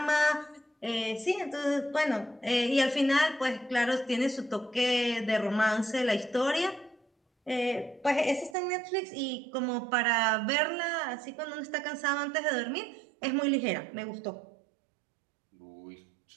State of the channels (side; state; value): left; drops out; at 8.6 s